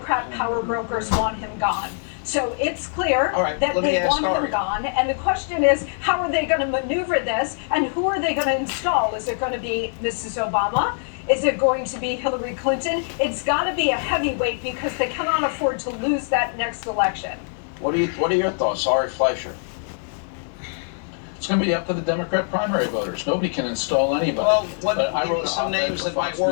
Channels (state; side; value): silent; right; 63 dB below the other